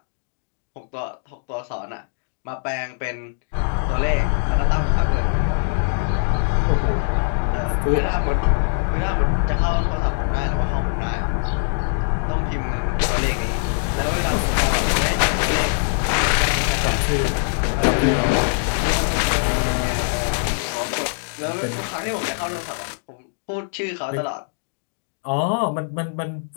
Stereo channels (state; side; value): silent; right; digital silence